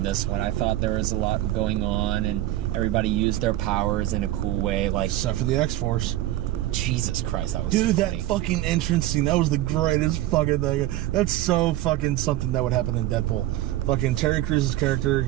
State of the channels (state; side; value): quieter; left; 14.8 dB